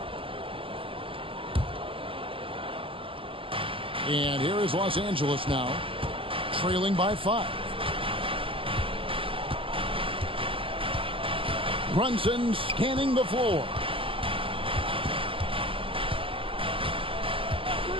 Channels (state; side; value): late; left; 0.26 ms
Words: And here is Los Angeles now, trailing by 5. Brunson scanning the floor.